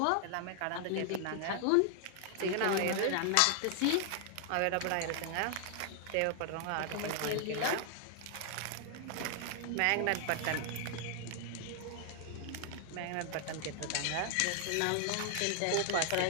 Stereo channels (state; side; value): different; both; correlation 0.00